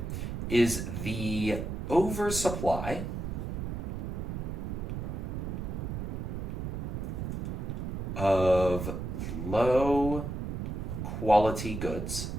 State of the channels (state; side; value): noise; right; rumble, 4 dB below the sound